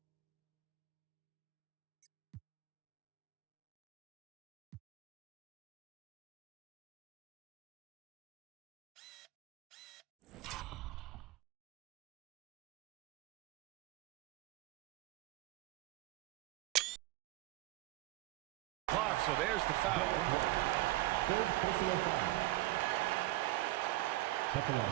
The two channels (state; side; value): quieter; left; 17.8 dB